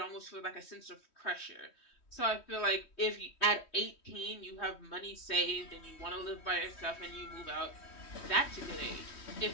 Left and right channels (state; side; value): late; right; 3.1 ms